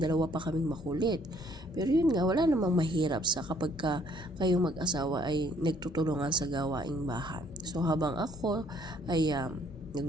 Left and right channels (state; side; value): normal; both; correlation 0.63